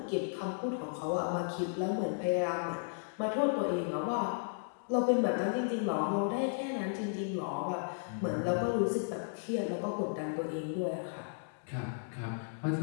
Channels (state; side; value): silent; right; digital silence